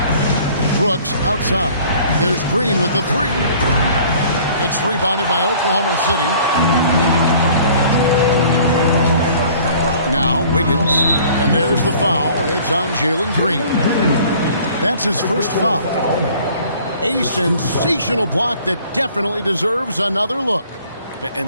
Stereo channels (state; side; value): inverted; both; correlation -0.52